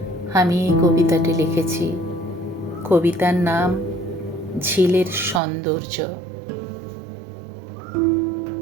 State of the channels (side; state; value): left; drops out; at 5.4 s